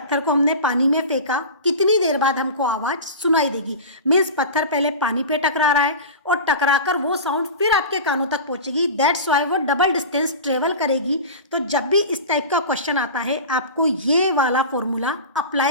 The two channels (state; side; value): inverted; both; correlation -0.31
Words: को हमने पानी में फेंका, कितनी देर बाद हमको आवाज सुनाई देगी? मीन्स पत्थर पहले पानी पे टकरा रहा है और टकराकर वो साउंड फिर आपके कानों तक पहुंचेगी। दैट्स वाई वो डबल डिस्टेंस ट्रेवल करेगी। तो जब भी इस टाइप का क्वेश्चन आता है आपको ये वाला फॉर्मूला